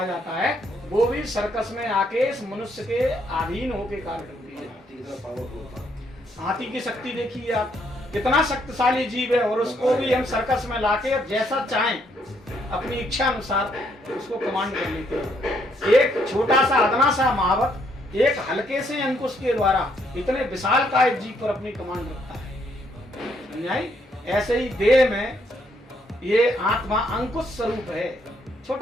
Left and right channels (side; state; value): both; normal; correlation 0.72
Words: जाता है वो भी सर्कस में आके इस मनुष्य के अधीन होके कार्य करती है। हाथी की शक्ति देखिए आप, कितना शक्तिशाली जीव है और उसको भी हम सर्कस में लाके जैसा चाहें अपनी इच्छा अनुसार उसको कमांड कर लेते हैं। एक छोटा सा अदना सा महावत एक हल्के से अंकुश के द्वारा इतने विशाल काय जीव पर अपनी कमांड रखता है। समझाई? ऐसे ही देह में ये आत्मा अंकुश स्वरूप है,